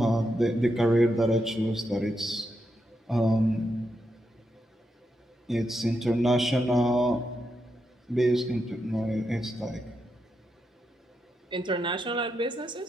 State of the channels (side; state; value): both; normal; correlation 0.84